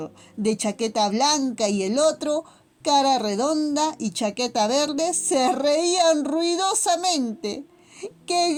de chaqueta blanca y el otro, cara redonda y chaqueta verde, se reían ruidosamente. ¡Qué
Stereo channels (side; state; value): both; identical; correlation 1.00